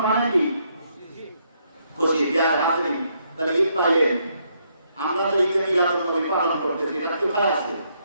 মানে কি? খুশি। যার হাজির তাহলে ঈদ পাইলেন, আমরা তো ঈদে মিলাদুন নবী পালন করতেছি, এটা কোথায় আছে?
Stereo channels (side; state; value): both; inverted; correlation -0.74